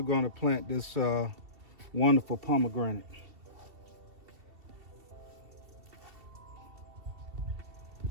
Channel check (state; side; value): late; left; 2.7 ms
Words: going to plant this wonderful pomegranate.